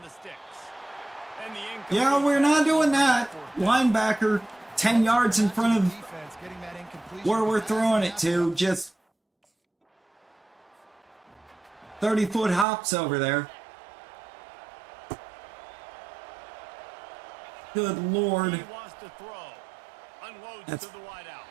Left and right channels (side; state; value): left; drops out; at 12.7 s